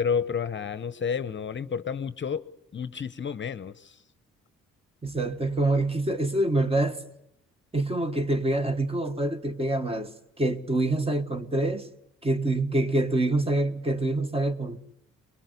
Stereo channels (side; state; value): both; normal; correlation 0.66